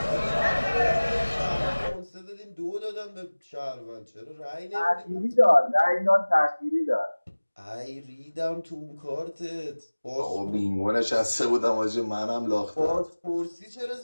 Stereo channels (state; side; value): inverted; both; correlation -1.00